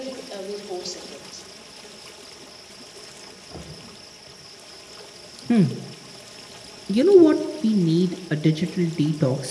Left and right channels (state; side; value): identical; both; correlation 1.00